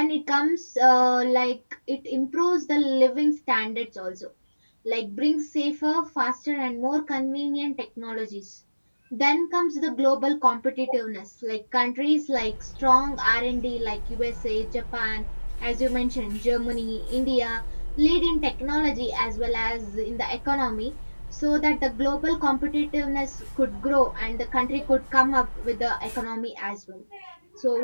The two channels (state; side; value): inverted; both; correlation -1.00